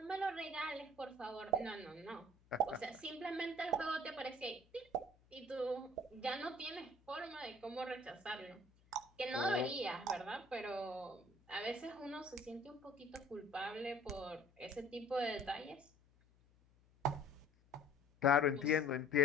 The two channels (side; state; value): left; noise; hum, 30 dB below the sound